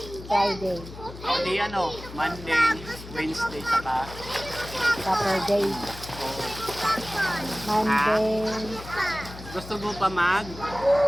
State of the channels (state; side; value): noise; left; hum, 14 dB below the sound